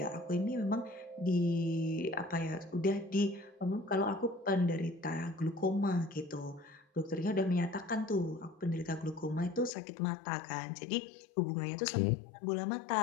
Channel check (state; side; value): drops out; right; at 9.7 s